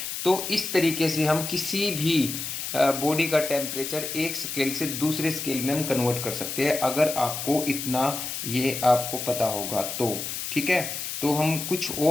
तो इस तरीके से हम किसी भी बॉडी का टेम्परेचर एक स्केल से दूसरे स्केल में हम कन्वर्ट कर सकते हैं, अगर आपको इतना ये आपको पता होगा तो। ठीक है, तो हम कुछ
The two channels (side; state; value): left; noise; hiss, 5 dB below the sound